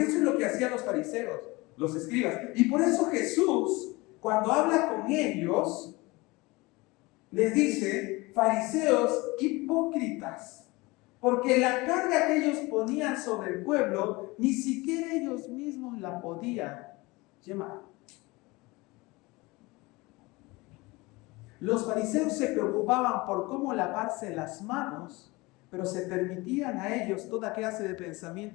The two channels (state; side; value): quieter; right; 23.1 dB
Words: eso es lo que hacían los fariseos, los escribas. Y por eso Jesús, cuando habla con ellos, les dice, fariseos hipócritas. Porque la carga que ellos ponían sobre el pueblo, ni siquiera ellos mismos la podían llevar. Los fariseos se preocupaban por cómo lavarse las manos, pero se permitían a ellos toda clase de